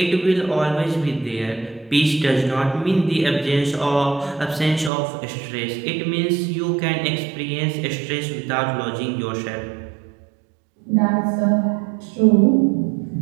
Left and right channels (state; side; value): drops out; left; at 4.9 s